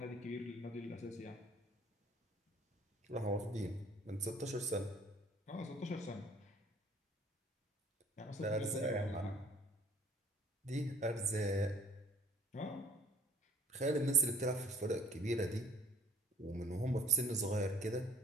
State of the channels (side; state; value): both; normal; correlation 0.54